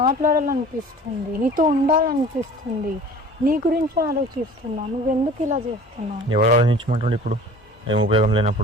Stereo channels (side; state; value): both; normal; correlation 0.45